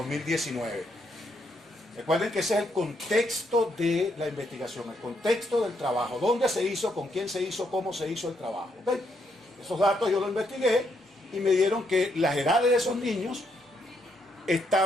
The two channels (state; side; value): normal; both; correlation 0.76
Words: Recuerden que ese es el contexto de la investigación, el contexto del trabajo, dónde se hizo, con quién se hizo, cómo se hizo el trabajo. ¿Okay? Esos datos yo los investigué y me dieron que las edades de esos niños